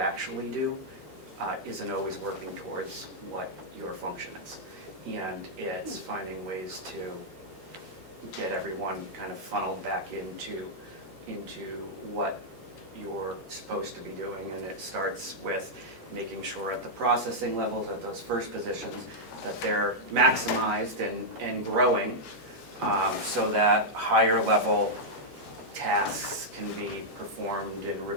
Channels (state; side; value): late; right; 2.4 ms